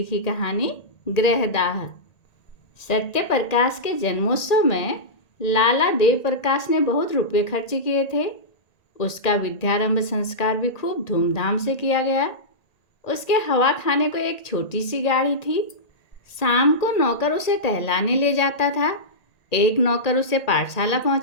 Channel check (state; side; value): late; right; 1.8 ms